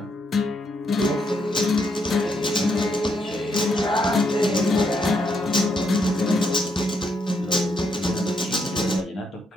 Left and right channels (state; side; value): normal; both; correlation 0.76